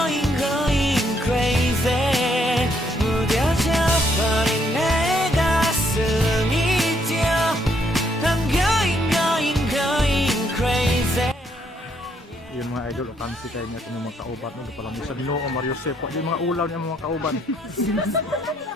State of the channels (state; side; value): normal; both; correlation 0.71